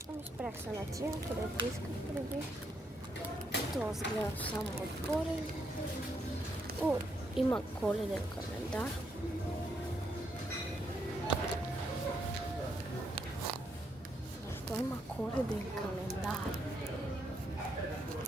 Ами спрях се на тия, където исках преди. Това сгледам само отгоре. О, има коледен календар. Защо има коледен календар?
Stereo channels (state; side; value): normal; both; correlation 0.76